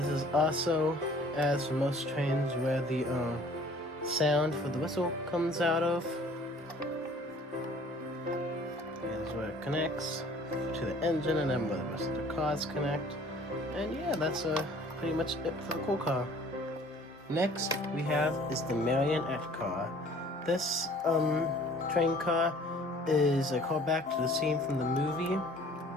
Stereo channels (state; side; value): normal; both; correlation 0.52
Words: is also, as for most trains, where the sound for the whistle comes out of. Here's where it connects to the engine, and then where the rest of the cars connect. And yeah, that's pretty much it for the cool car. Next we have is the marionette car. This train car is a callback to the scene from the movie